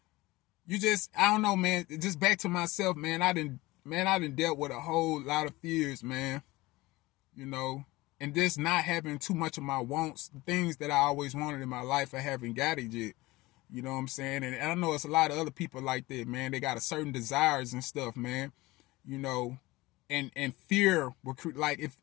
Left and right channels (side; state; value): right; quieter; 20.2 dB